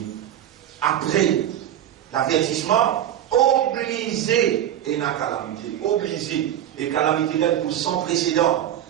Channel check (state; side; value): quieter; left; 11.3 dB